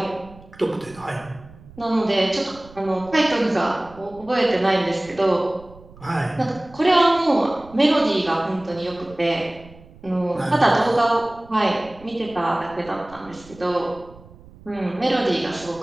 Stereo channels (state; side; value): noise; right; rumble, 22 dB below the sound